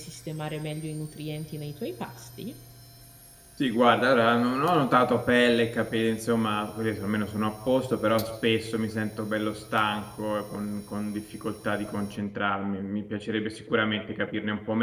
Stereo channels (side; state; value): both; identical; correlation 1.00